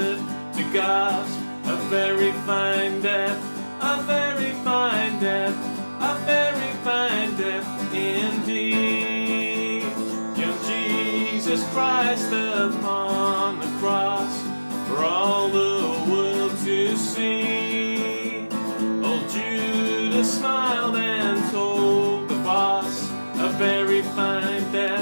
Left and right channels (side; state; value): both; inverted; correlation -1.00